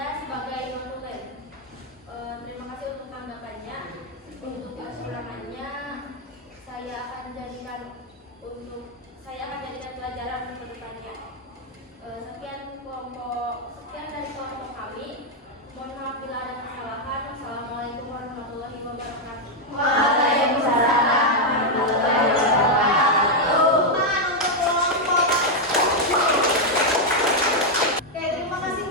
sebagai non-tulen. Terima kasih untuk tanggapannya. Untuk kekurangannya saya akan jadikan pelajaran ke depannya. Sekian dari kelompok kami. Mohon maaf bila ada kesalahan. Assalamualaikum warahmatullahi wabarakatuh. Waalaikumsalam warahmatullahi wabarakatuh. Untuk kelompok. Oke, terima kasih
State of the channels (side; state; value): both; normal; correlation 0.00